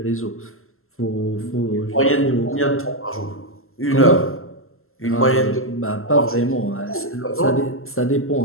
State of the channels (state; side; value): late; right; 0.62 ms